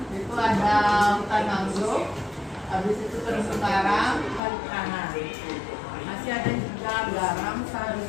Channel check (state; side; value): drops out; right; at 4.4 s